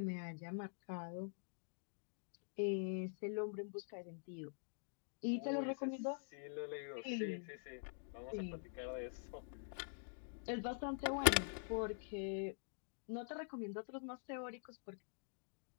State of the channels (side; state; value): right; silent; digital silence